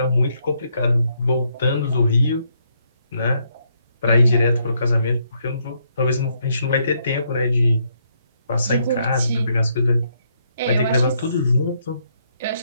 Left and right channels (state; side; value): inverted; both; correlation -0.74